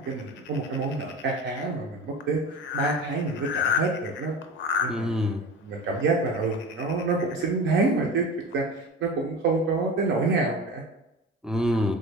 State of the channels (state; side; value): normal; both; correlation 0.32